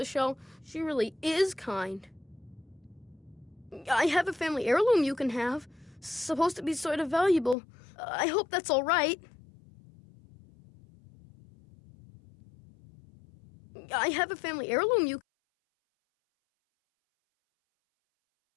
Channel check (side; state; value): right; drops out; at 7.6 s